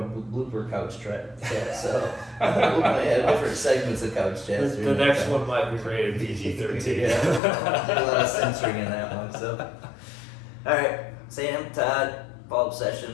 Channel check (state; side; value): drops out; right; at 7.4 s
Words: blooper couch chat. So we'll probably have different segments of couch chats. The next one might be rated PG-13. Yeah, do a lot of censoring in that one. So, all right, Sam, Todd, follow-up